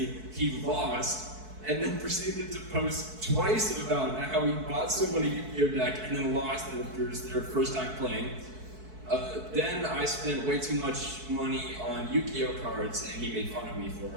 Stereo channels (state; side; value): late; left; 4.6 ms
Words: he lost, and then proceeded to post twice about how he bought someone a Yu-Gi-Oh! Deck and then lost after their first time playing. Then I spent way too much money on Yu-Gi-Oh cards, and he made fun of me for